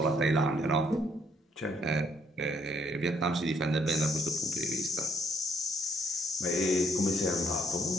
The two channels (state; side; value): normal; both; correlation 0.67